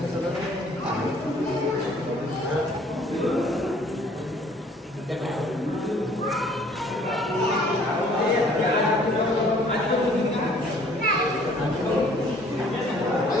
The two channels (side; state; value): both; normal; correlation 0.57